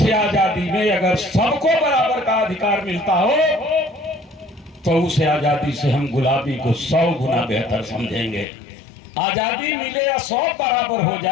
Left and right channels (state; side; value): drops out; right; at 8.5 s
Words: आजादी में अगर सबको बराबर का अधिकार मिलता हो तो उस आजादी से हम गुलामी को 100 गुना बेहतर समझेंगे। आजादी मिले या 100 बराबर हो